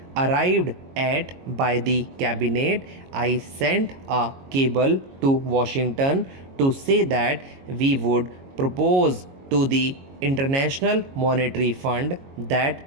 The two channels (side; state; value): left; late; 22 ms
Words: arrived at by the cabinet, I sent a cable to Washington to say that we would propose to the International Monetary Fund that